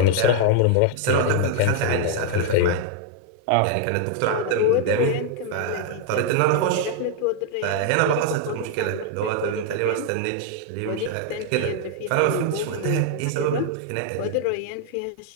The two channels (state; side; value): different; both; correlation 0.00